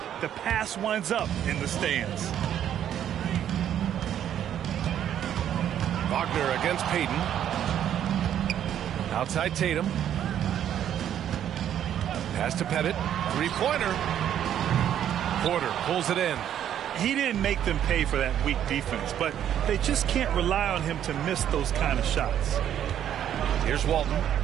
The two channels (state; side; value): quieter; left; 10.2 dB